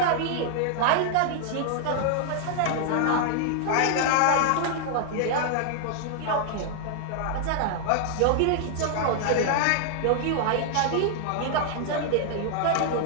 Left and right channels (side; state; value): both; different; correlation -0.01